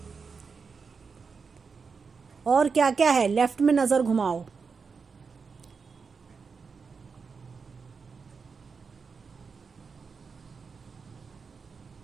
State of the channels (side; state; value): left; quieter; 5.3 dB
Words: और क्या क्या है? लेफ्ट में नजर घुमाओ।